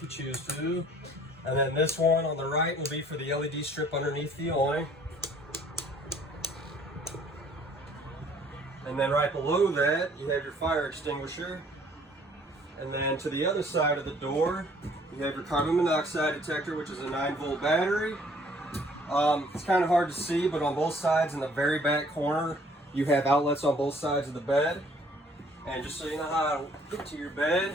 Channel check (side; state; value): both; normal; correlation 0.58